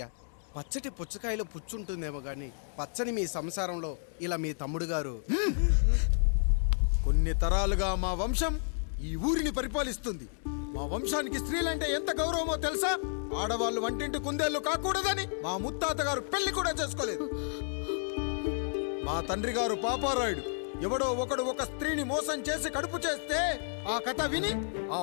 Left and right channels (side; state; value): right; silent; digital silence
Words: పచ్చటి పుచ్చకాయలో పుచ్చుంటుందేమో గాని పచ్చని మీ సంసారంలో ఇలా మీ తమ్ముడు గారు. కొన్ని తరాలుగా మా వంశం ఈ ఊరిని పరిపాలిస్తుంది. మా వంశానికి స్త్రీలంటే ఎంత గౌరవమో తెలుసా? ఆడవాళ్ళు వంటింటి కుందేళ్లు కాకూడదని మా ముత్తాత గారు పెళ్లి కూడా చేసుకోలేదు. మా తండ్రి గారు పాపారాయుడు ఎవడో ఒకడు ఒక స్త్రీని మోసం చేసి కడుపు చేస్తే ఆ కథ విని ఆ